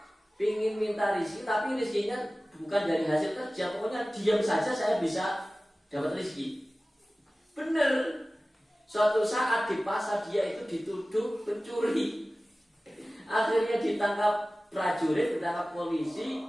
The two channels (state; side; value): normal; both; correlation 0.97